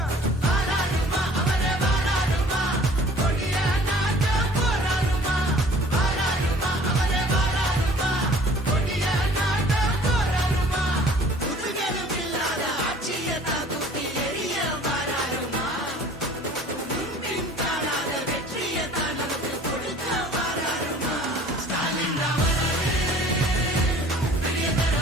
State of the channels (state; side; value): normal; both; correlation 0.51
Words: வாராருமா அவரே வாராருமா கொடிய நாட்ட போராருமா வாராருமா அவரே வாராருமா கொடிய நாட்ட போராருமா புதுகலும் இல்லாத ஆட்சியை தாக்குத்தி எரிய வாராருமா முன்பின் காணாத வெற்றியை தான் நமக்கு கொடுக்க வாராருமா ஸ்டாலின் ராமரே பெரிய தர